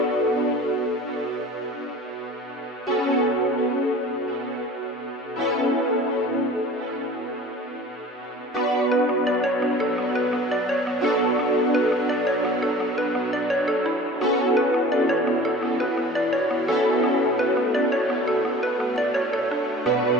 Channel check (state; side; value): normal; both; correlation 0.43